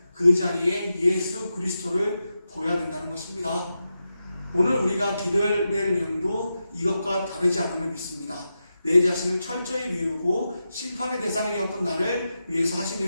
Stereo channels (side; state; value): both; inverted; correlation -0.89